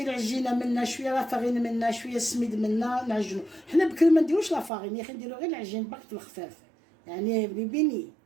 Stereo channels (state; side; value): drops out; left; at 4.7 s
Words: العجينه منا شويه لا فارين منا شويه السميد منا نعجنو حنا بكري ما نديروش لا فارين يا اخي نديرو غير العجين باك الخفاف يعني بني